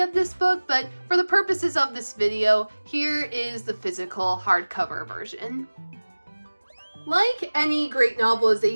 this book, but for the purposes of this video, here is the physical hardcover version. Like any great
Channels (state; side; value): inverted; both; correlation -1.00